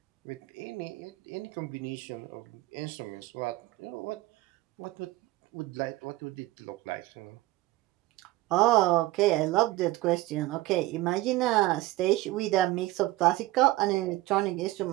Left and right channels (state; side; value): quieter; left; 17.9 dB